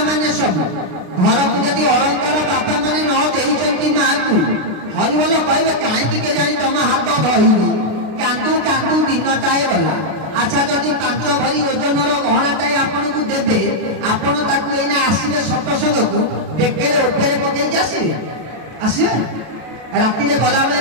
माने सब घर को जदि अलंकार बापा माने न देइचंती मां को हरिबोल कहबे काहे के जानी तम हाथ धइबी कांदू दिनटाए गला। अच्छा जदि 5 भरी ओजनर गहनाटाए आपन को देबे आपन ताकू एना आसीबे सत्संग को बेकेरे ऊपर पकई आसीबे राति रे गला बेले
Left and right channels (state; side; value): late; left; 32 ms